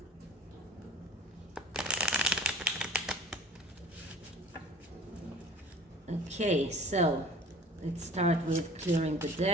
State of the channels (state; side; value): normal; both; correlation 0.45